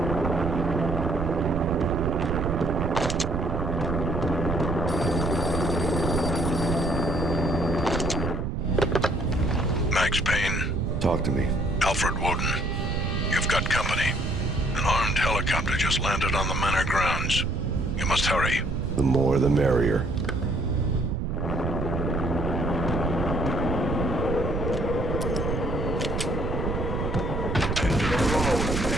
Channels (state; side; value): noise; right; rumble, 1 dB below the sound